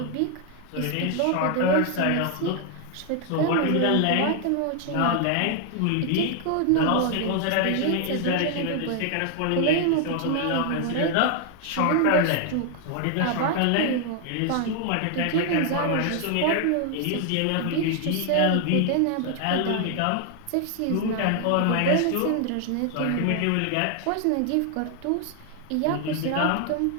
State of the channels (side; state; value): both; different; correlation 0.00